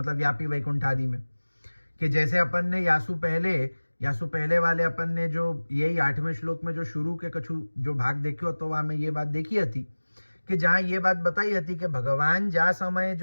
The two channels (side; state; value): both; inverted; correlation -1.00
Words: व्यापी वैकुंठ आदि में, कि जैसे अपन ने यासु पहले वाले अपन ने जो यही 8वें श्लोक में जो शुरू के कछु जो भाग देखियो तो वहां में ये बात देखी थी कि जहां ये बात बताई थी कि भगवान जा समय